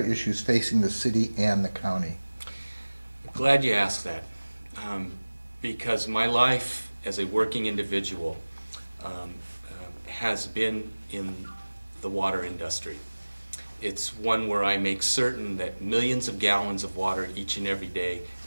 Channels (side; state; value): both; inverted; correlation -1.00